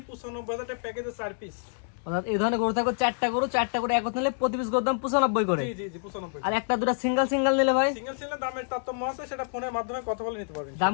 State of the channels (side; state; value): right; silent; digital silence